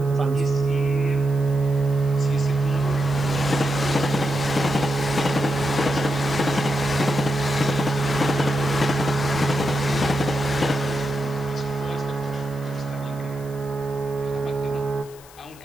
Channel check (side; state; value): left; noise; hiss, 22 dB below the sound